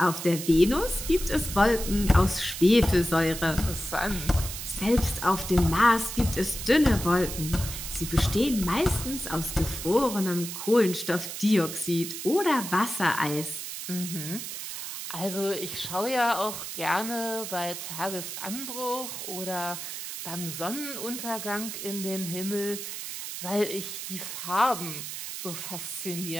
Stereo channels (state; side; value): noise; right; hiss, 7 dB below the sound